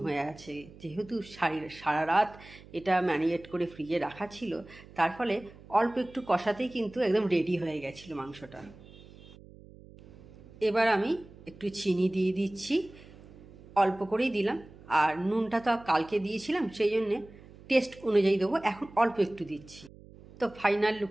হয়ে আছে, যেহেতু সারা রাত এটা ম্যারিনেট করে ফ্রিজে রাখা ছিল, তার ফলে অল্প একটু কষাতেই কিন্তু একদম রেডি হয়ে গেছিলো মাংসটা। এবার আমি একটু চিনি দিয়ে দিচ্ছি, অল্প করেই দিলাম, আর নুনটা তো কালকে দিয়েছিলাম, সেই জন্যে টেস্ট অনুযায়ী দেবো, এখন অল্প একটু দিচ্ছি। তো ফাইনাল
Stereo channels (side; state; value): right; noise; hum, 21 dB below the sound